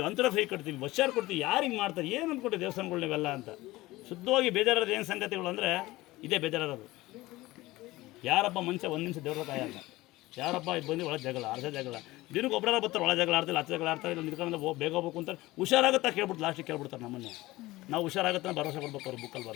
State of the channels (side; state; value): right; quieter; 18.9 dB